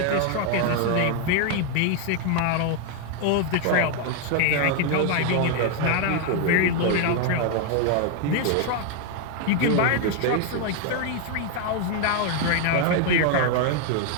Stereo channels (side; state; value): both; different; correlation 0.01